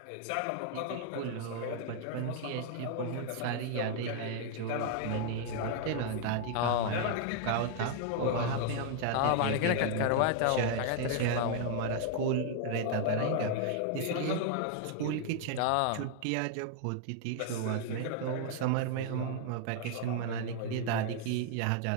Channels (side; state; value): both; different; correlation 0.00